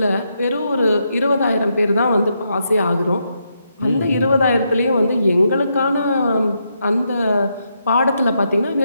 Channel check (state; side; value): inverted; both; correlation -0.81